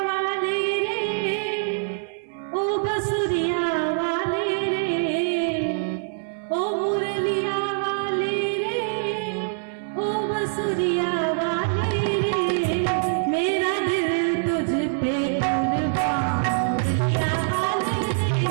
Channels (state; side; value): silent; left; 62 dB below the other